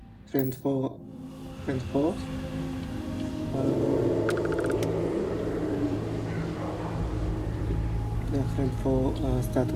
friend 4. The friend 4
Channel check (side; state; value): both; identical; correlation 1.00